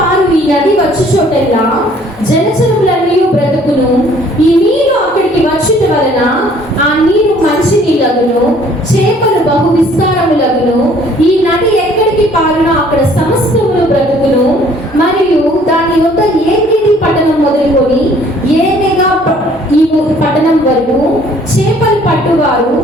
ఈ నది వచ్చు చోటెల్లా జలచరములన్నీ బ్రతుకును. ఈ నీరు అక్కడికి వచ్చుట వలన ఆ నీరు మంచి నీళ్ళగును, చేపలు బహు విస్తారములగును. ఈ నది ఎక్కడికి పారునో అక్కడ సమస్తములు బ్రతుకును. మరియు దాని యొక్క ఏకేది పట్టణం మొదలుకొని ఏనేగా ఈ పట్టణం వరకు చేపలు పట్టువారు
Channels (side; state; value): both; normal; correlation 0.58